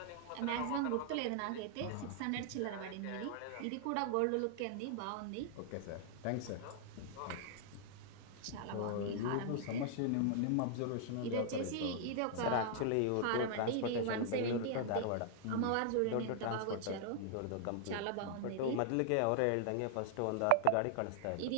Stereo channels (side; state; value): both; different; correlation -0.01